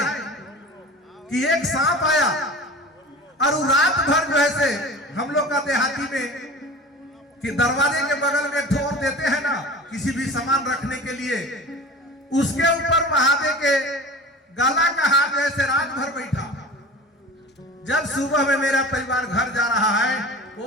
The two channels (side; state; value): both; normal; correlation 0.37